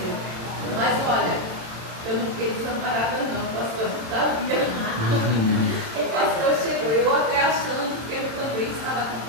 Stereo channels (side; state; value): left; late; 27 ms